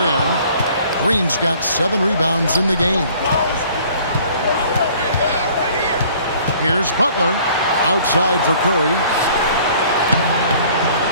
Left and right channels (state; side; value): inverted; both; correlation -0.54